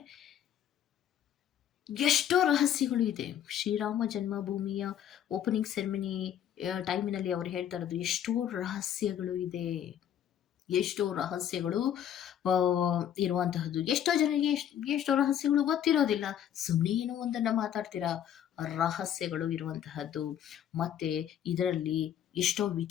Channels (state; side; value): quieter; right; 10.0 dB